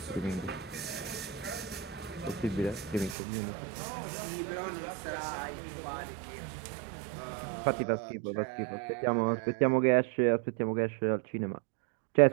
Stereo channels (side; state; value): left; drops out; at 3.2 s